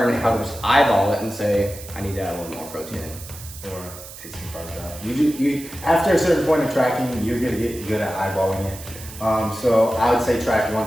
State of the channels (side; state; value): right; noise; hiss, 15 dB below the sound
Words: how to just eyeball it and say, I need to add a little more protein in. Or take some carbs out. You after a certain point of tracking, you're gonna get good at eyeballing it. So I would say track